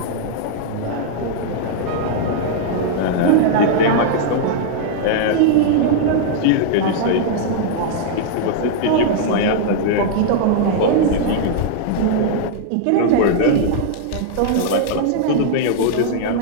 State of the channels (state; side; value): different; both; correlation -0.01